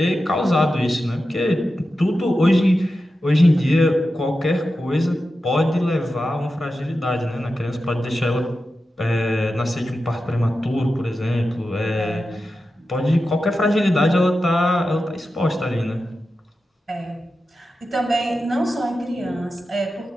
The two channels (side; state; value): both; normal; correlation 0.91